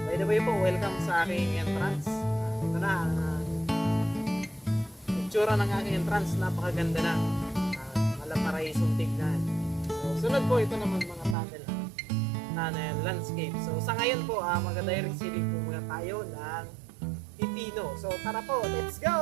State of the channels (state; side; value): drops out; left; at 11.4 s